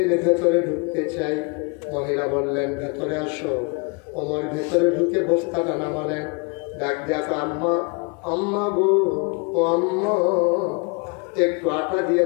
ভেতরে ঢুকতে চাই। মহিলা বললেন, ভেতরে আসো। ওমর ভেতরে ঢুকে বস্তাটা নামালেন। ডাক দেখো, আম্মা, আম্মা গো, ও আম্মা, একটু আটা দিয়ে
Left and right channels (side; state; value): right; quieter; 32.3 dB